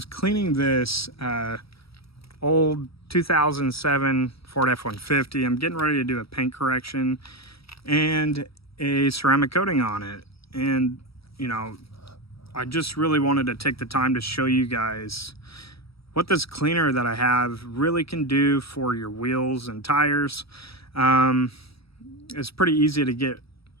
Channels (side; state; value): right; late; 0.76 ms